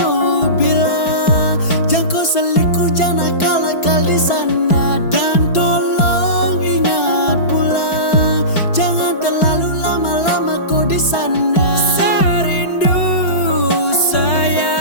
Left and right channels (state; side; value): late; right; 4.5 ms